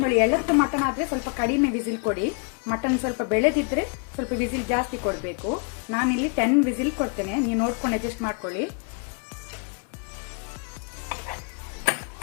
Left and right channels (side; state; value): right; quieter; 38.0 dB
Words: ಎಳತ್ತು ಮಟನ್ ಆದರೆ ಸ್ವಲ್ಪ ಕಡಿಮೆ ವಿಸಿಲ್ ಕೊಡಿ, ಮಟನ್ ಸ್ವಲ್ಪ ಬೆಳೆದಿದ್ರೆ ಸ್ವಲ್ಪ ವಿಸಿಲ್ ಜಾಸ್ತಿ ಕೊಡಬೇಕು. ನಾನಿಲ್ಲಿ 10 ವಿಸಿಲ್ ಕೊಡ್ತೇನೆ, ನೀವು ನೋಡ್ಕೊಂಡು ಅಡ್ಜಸ್ಟ್ ಮಾಡ್ಕೊಳ್ಳಿ.